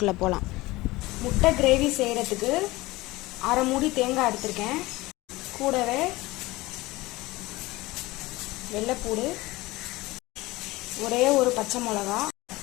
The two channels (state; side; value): quieter; right; 20.2 dB